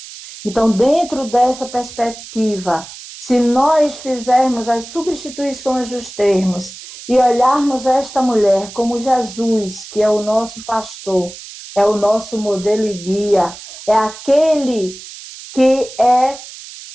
Então, dentro dessa perspectiva, se nós fizermos as substituições dos termos e olharmos esta mulher como Jesus, que é o nosso pastor, é o nosso modelo e guia, é aquele que é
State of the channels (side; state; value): right; noise; hiss, 15 dB below the sound